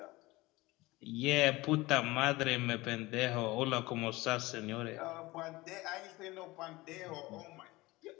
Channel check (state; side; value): quieter; right; 20.8 dB